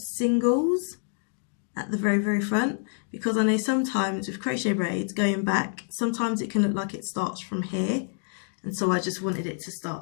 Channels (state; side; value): silent; right; 60 dB below the other